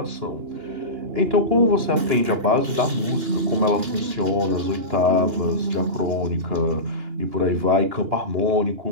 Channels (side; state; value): left; late; 2.9 ms